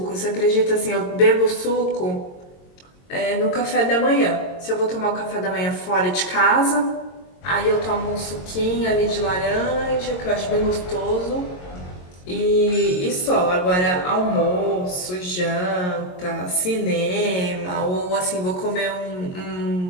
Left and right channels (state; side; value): late; right; 22 ms